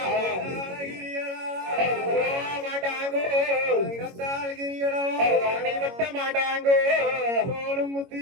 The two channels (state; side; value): late; left; 22 ms